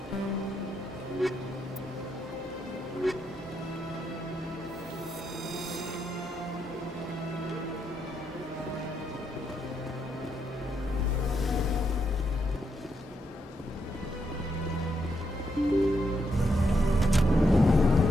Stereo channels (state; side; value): normal; both; correlation 0.80